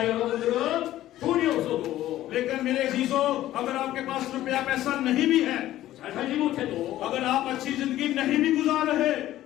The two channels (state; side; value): quieter; right; 14.1 dB